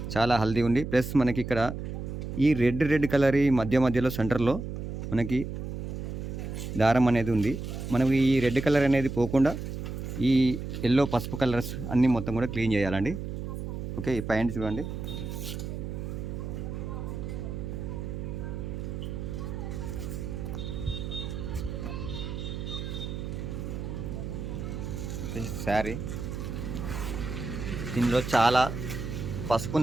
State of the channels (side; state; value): right; noise; hum, 6 dB below the sound